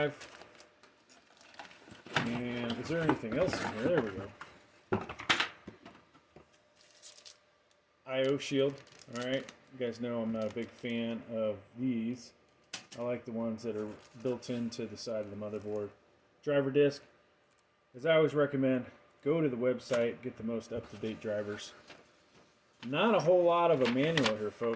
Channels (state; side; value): identical; both; correlation 1.00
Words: And is there anything else in here? There we go. I/O shield. Alright, you guys know I'm not a big fan of these. I like the ones that are built into the side of the motherboard. Driver disc. As I always recommend, go to the website, get the most up-to-date drivers. Not a whole lot of a manual here,